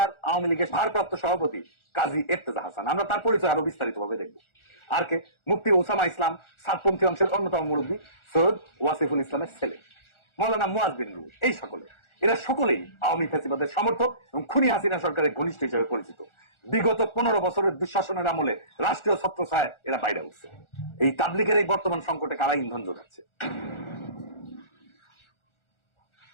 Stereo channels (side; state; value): right; late; 1.4 ms